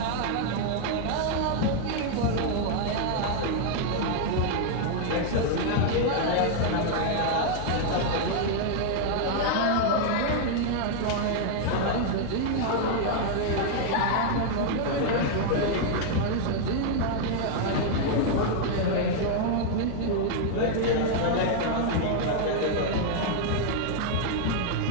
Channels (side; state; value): both; different; correlation 0.00